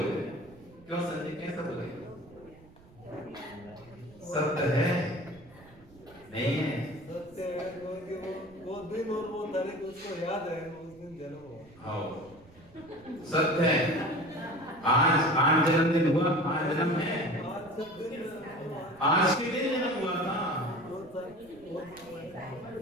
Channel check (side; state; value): right; noise; rumble, 24 dB below the sound